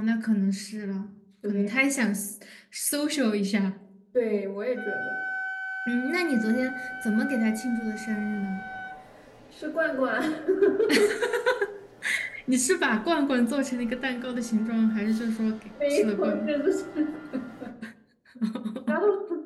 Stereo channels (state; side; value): identical; both; correlation 1.00